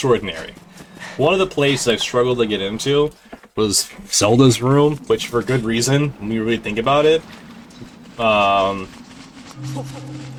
One of the places I struggled to get into was Zelda's room, which for good reason, when we really think about it. But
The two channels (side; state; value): both; identical; correlation 1.00